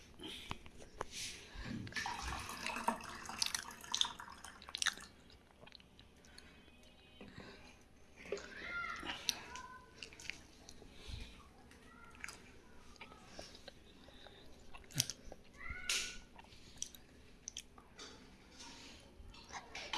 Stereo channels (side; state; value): both; identical; correlation 1.00